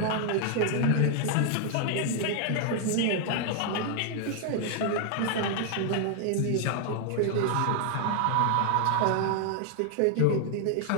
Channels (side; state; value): both; different; correlation 0.00